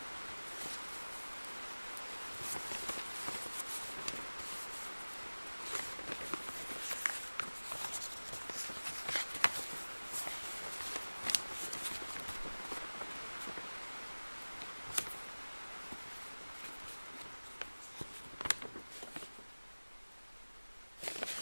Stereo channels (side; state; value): both; inverted; correlation -1.00